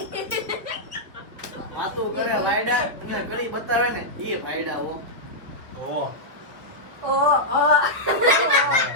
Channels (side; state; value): left; late; 1.3 ms